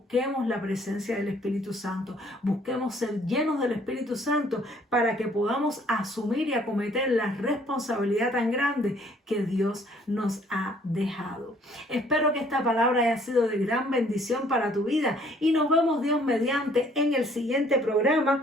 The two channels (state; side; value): normal; both; correlation 0.60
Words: la presencia del Espíritu Santo, busquemos ser llenos del Espíritu Santo para que podamos asumir y acometer la responsabilidad tan grande que Dios nos ha dejado. Espero que esta palabra haya sido de gran bendición para tu vida y nos vemos Dios mediante en el siguiente